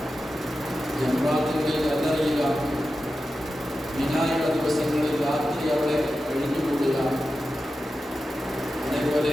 ജംറാത്തുകളിൽ കല്ലെറിയുക, മിനായുടെ ദിവസങ്ങളിൽ രാത്രി അവിടെ കഴിഞ്ഞുകൂടുക,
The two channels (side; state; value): both; normal; correlation 0.92